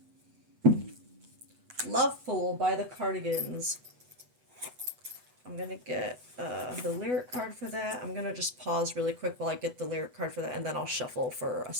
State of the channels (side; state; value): left; late; 8.1 ms